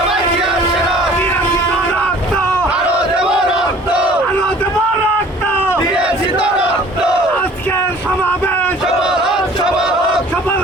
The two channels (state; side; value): normal; both; correlation 0.50